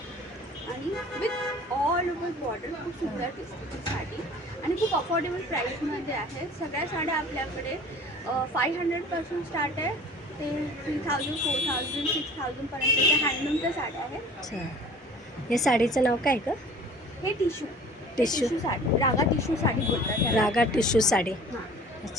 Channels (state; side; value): normal; both; correlation 0.45